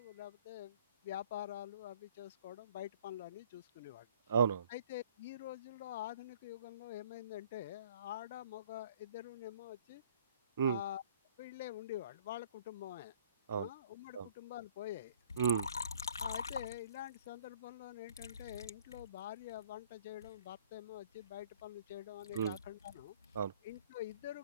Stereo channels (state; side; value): inverted; both; correlation -0.56